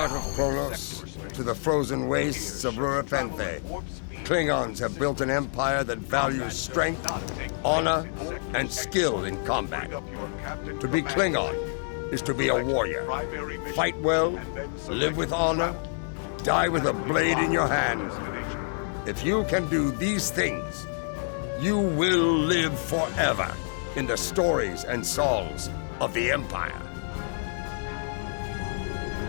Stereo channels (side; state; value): right; silent; 60 dB below the other